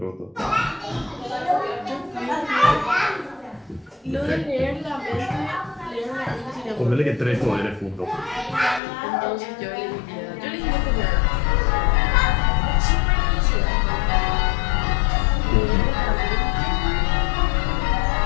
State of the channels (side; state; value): right; drops out; at 8.8 s